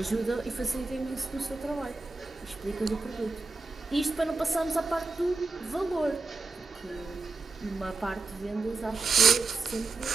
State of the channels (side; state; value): left; quieter; 3.9 dB